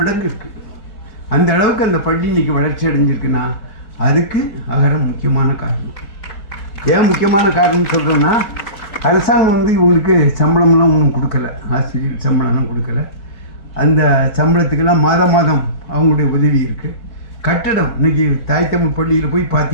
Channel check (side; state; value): right; late; 4.7 ms